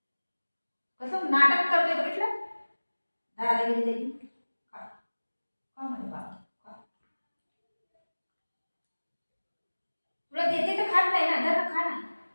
कसं नाटक करतोय बघितलं दादागिरी त्याची. खा माझं बाळ खा. तुला देते तर खात नाही ना, जरा खा ना.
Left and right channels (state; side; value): inverted; both; correlation -1.00